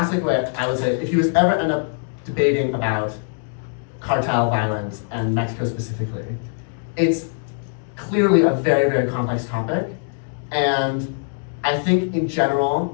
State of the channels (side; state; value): right; silent; 64 dB below the other